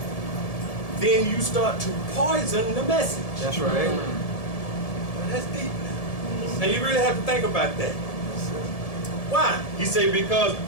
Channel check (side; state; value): right; late; 1.7 ms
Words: then you start to poison the message. That's right. Well, that's deep now. Now you really have to think about that. Why? He said, because